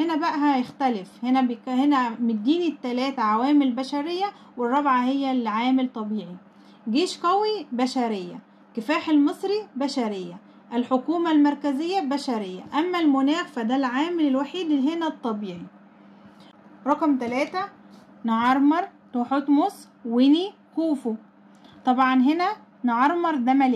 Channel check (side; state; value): both; identical; correlation 1.00